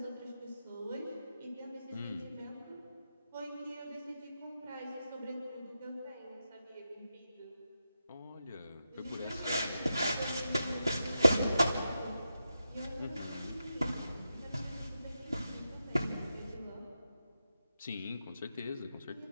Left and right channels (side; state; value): both; inverted; correlation -0.88